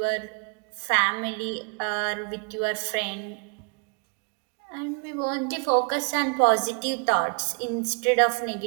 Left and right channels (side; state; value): left; quieter; 37.1 dB